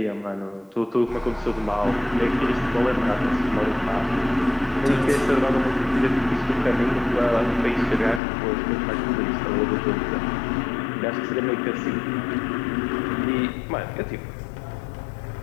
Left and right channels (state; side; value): drops out; right; at 8.2 s